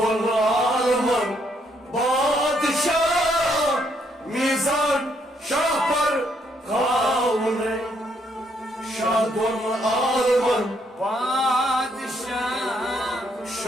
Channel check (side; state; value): both; normal; correlation 0.72